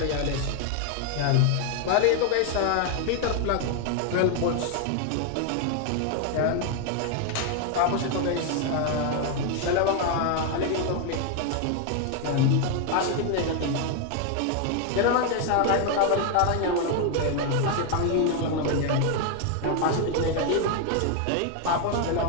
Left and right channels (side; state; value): both; different; correlation 0.01